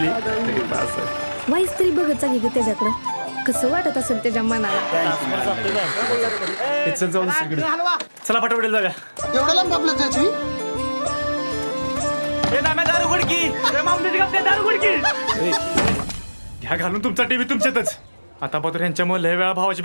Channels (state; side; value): inverted; both; correlation -1.00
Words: तरी बास आहे. वाईस तरी बघत चांगली ग त्याच्याकडं. कसं वाटत असेल त्याच्या मनाला. चल जाऊ दुसरीकडे. चला पटापट जागा. एवढं लांब आपलं त्याची घ्या घालून तुमचा टीव्ही तुमच्यातच. आता पात्र यांच्यामुळे लय वेळा भावाची